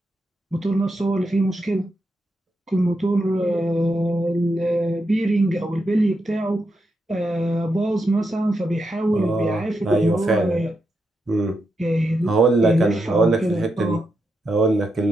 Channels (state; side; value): normal; both; correlation 0.85